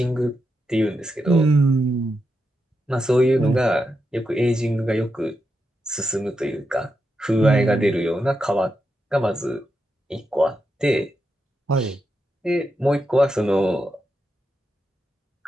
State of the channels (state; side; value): normal; both; correlation 0.86